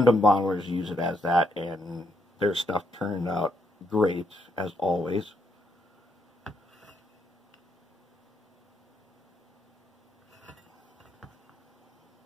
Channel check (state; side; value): normal; both; correlation 0.75